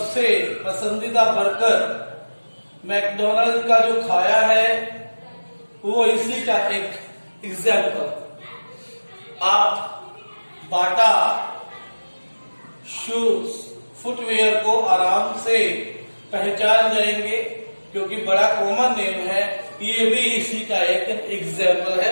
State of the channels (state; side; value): inverted; both; correlation -1.00